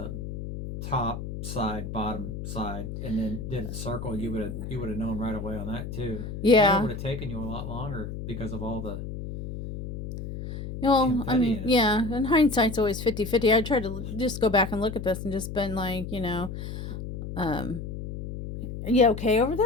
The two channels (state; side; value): noise; left; hum, 7 dB below the sound